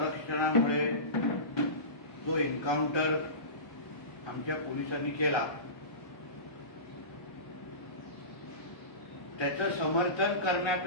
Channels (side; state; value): right; late; 1.3 ms